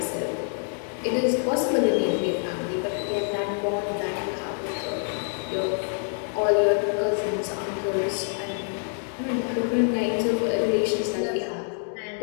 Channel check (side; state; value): right; silent; 55 dB below the other